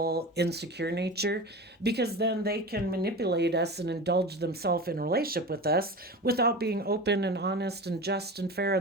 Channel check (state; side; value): normal; both; correlation 0.30